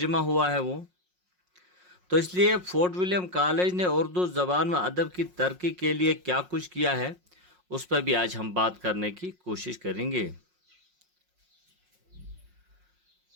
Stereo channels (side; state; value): left; late; 5.5 ms